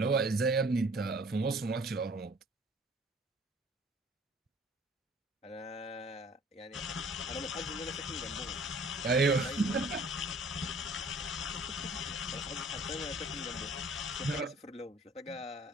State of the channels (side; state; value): both; normal; correlation 0.52